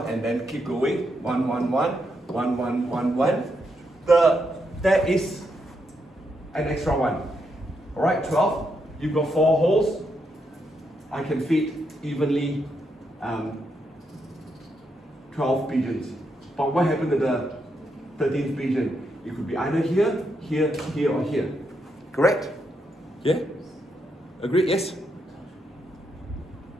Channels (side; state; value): both; normal; correlation 0.80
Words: and then keep going, 1, 1, 1, 1, 1, 1, 1, there is an extra 1. Alright, 12. You've got 4 holes. I can fit evenly 12 pigeons. But what happened to the 13th pigeon? It could be either here, here, here, or here. Correct? Yeah? Agree? Yes?